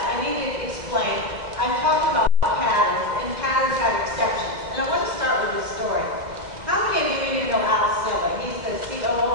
I need to explain. I'm talking about patterns, and patterns have exceptions. And I want to start with this story. How many of you even know Al Silva? He's the COO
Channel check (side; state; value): left; late; 2.1 ms